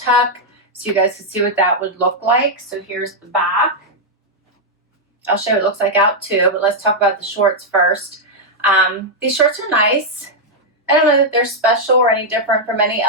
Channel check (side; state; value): both; normal; correlation -0.03